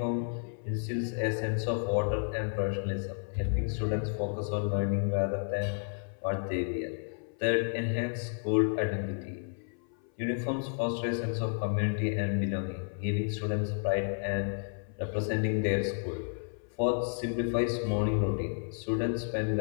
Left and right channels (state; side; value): silent; right; 57 dB below the other